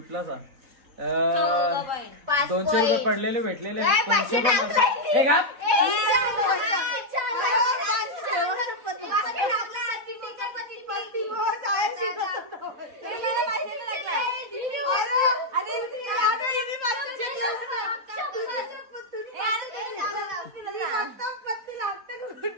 200 रुपये पडलेले भेटलेले आहेत. 200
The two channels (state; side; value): late; left; 4.0 ms